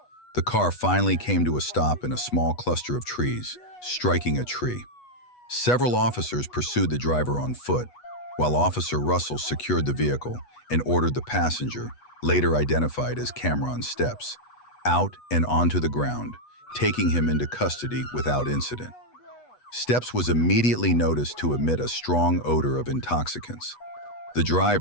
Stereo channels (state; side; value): late; right; 8.2 ms